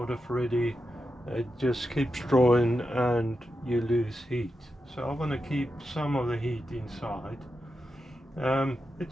of ready, it just keeps drawing and you lose heat. So I want to keep some of the heat inside.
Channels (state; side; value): normal; both; correlation 0.88